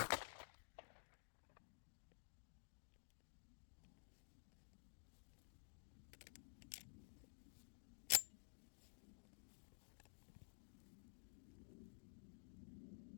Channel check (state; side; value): silent; right; digital silence